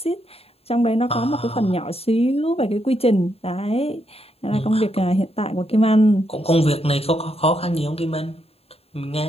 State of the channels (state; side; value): late; right; 0.29 ms